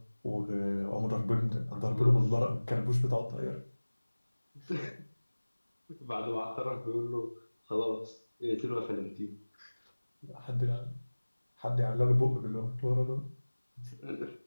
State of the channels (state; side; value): inverted; both; correlation -1.00